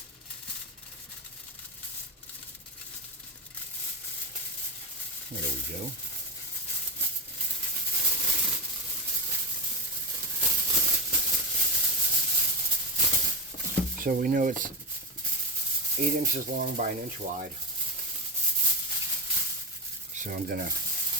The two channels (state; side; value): normal; both; correlation 0.16